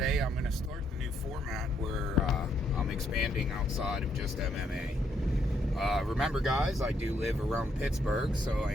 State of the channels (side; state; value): both; normal; correlation 0.74